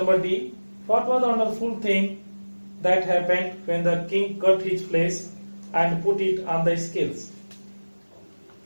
number D. What was the wonderful thing that happened when the king cut his flesh and put it on the scales?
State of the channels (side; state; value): both; inverted; correlation -1.00